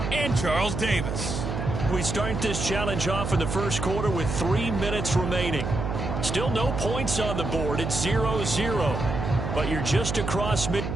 and Charles Davis. We start this challenge off in the first quarter with 3 minutes remaining. Still no points on the board. It's 0-0. But you're just across mid...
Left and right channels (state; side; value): noise; right; hum, 3 dB below the sound